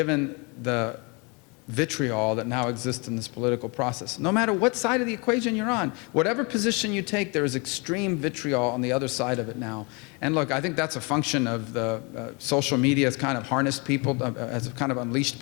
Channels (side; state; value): right; quieter; 30.6 dB